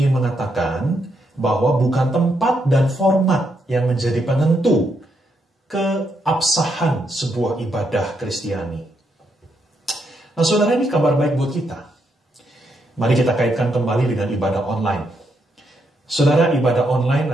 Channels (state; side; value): normal; both; correlation 0.79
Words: mengatakan bahwa bukan tempat dan format yang menjadi penentu keabsahan sebuah ibadah Kristiani. Nah, saudara, ini kabar baik buat kita. Mari kita kaitkan kembali dengan ibadah online. Saudara, ibadah online